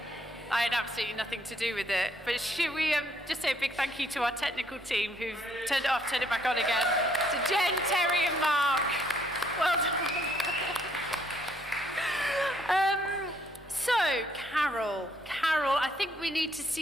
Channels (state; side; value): normal; both; correlation 0.69